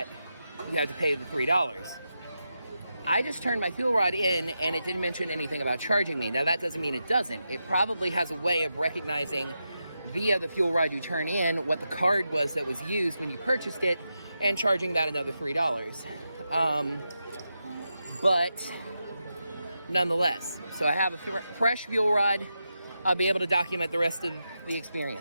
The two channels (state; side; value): inverted; both; correlation -0.88